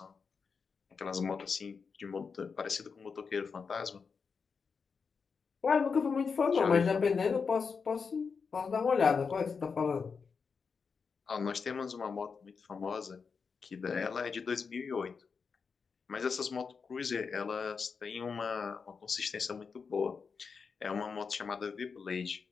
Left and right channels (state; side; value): quieter; right; 5.5 dB